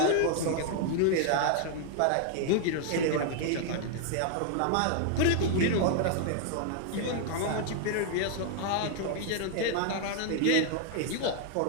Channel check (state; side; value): different; both; correlation 0.00